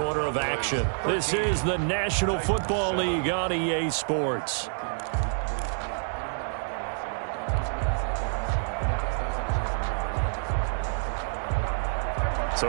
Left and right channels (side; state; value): left; silent; 60 dB below the other